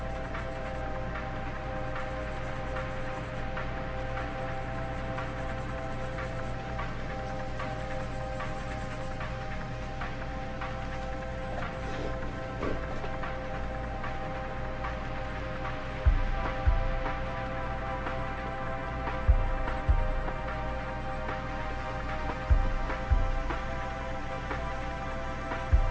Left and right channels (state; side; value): identical; both; correlation 1.00